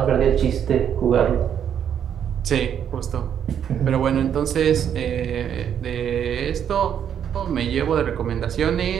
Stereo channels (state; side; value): quieter; left; 8.9 dB